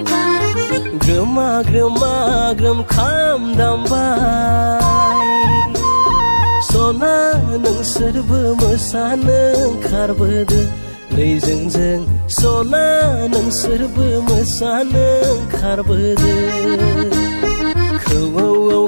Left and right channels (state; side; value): inverted; both; correlation -1.00